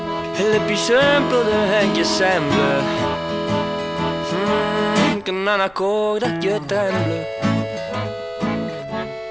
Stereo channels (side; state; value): left; noise; rumble, 29 dB below the sound